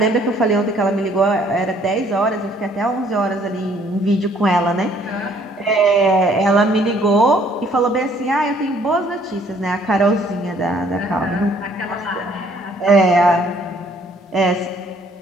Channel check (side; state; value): both; normal; correlation 0.62